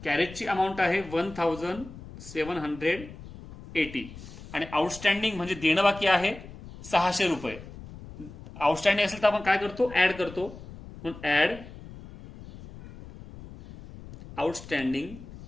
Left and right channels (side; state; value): left; noise; rumble, 16 dB below the sound